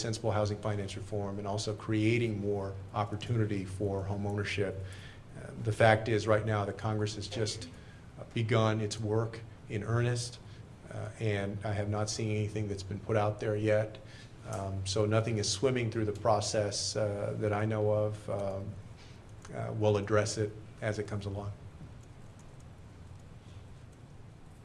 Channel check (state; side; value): identical; both; correlation 1.00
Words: housing finance reform, and also creating more opportunity for home ownership. The fact is, right now, the Congress has just begun its work in earnest, and I have not seen anything that's been put out there yet. So nothing is swimming through the process that I know of. We'll address it as it comes along.